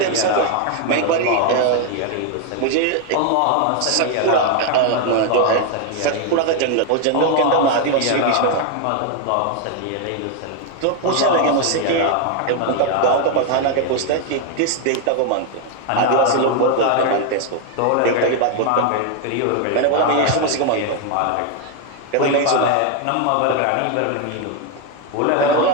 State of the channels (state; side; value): different; both; correlation 0.01